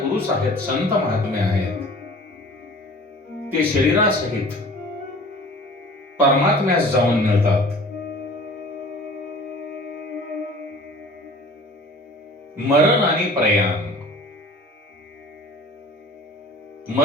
आहेत, संत महात्मे आहेत, ते शरीरासहित परमात्म्यास जाऊन मिळतात. मरण आणि प्रयाण,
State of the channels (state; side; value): normal; both; correlation 0.45